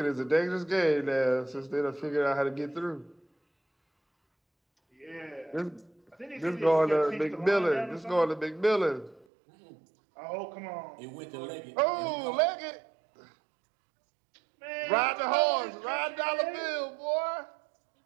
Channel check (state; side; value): drops out; left; at 9.2 s